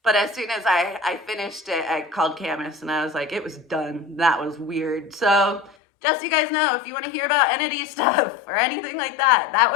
But as soon as I finished it, I called Camus, and I was like, it was done. That was weird. So just so you guys know, if you want to hear about entity stuff or anything like that, that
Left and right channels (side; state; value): right; drops out; at 5.8 s